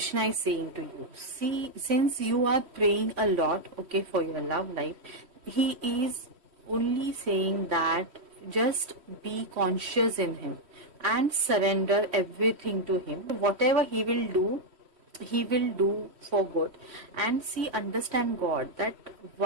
is saying to you? See, since you are praying a lot, okay, for your love life, he is only saying that just be conscious in him and surrender everything to him. Whatever he will do for good. And see, understand God, that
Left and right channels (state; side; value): late; left; 3.1 ms